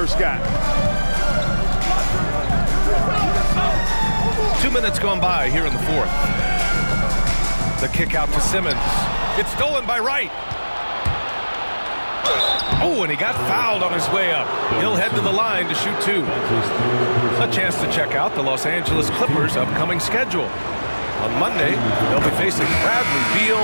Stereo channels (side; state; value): both; inverted; correlation -1.00